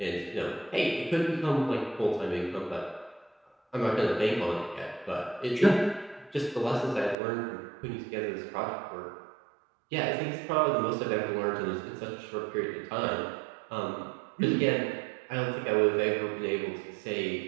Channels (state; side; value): drops out; left; at 7.2 s